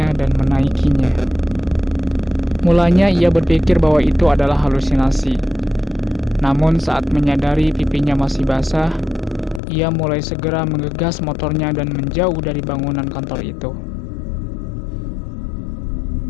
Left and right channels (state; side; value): drops out; right; at 9.6 s